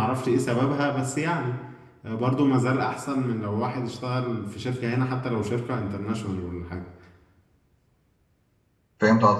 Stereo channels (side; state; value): both; identical; correlation 1.00